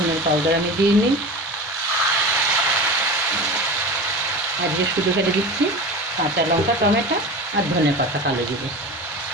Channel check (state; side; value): normal; both; correlation 0.30